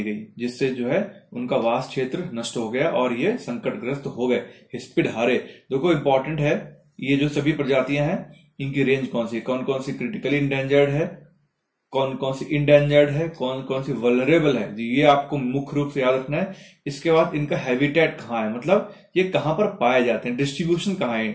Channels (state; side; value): identical; both; correlation 1.00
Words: गई, जिससे जो है उनका वास क्षेत्र नष्ट हो गया और ये संकटग्रस्त हो गए। हिस्पिड हारे, देखो इंपॉर्टेंट है, ये जो सभी प्रजातियां हैं इनकी रेंज कौन सी, कौन कौन सी क्रिटिकली इंडेंजर्ड है, कौन कौन सी इंडेंजर्ड है, कौन कौन सी वल्नरेबल है, ये आपको मुख्य रूप से याद रखना है। इसके बाद इनका हैबिटेट कहाँ है, मतलब ये कहां पर पाए जाते हैं, डिस्ट्रीब्यूशन कहाँ है,